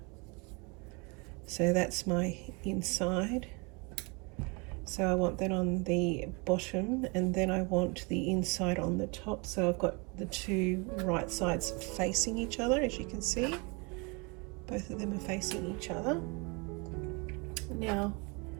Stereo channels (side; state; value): left; quieter; 30.4 dB